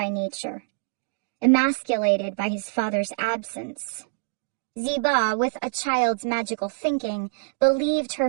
nature, emasculated by his father's absence. Ziba, with a child's magical thinking, believed her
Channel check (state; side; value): silent; left; digital silence